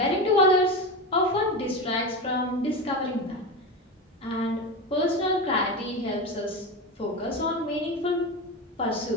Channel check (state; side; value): normal; both; correlation 0.21